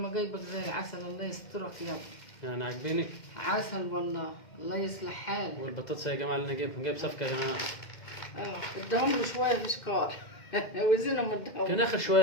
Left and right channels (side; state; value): right; late; 2.1 ms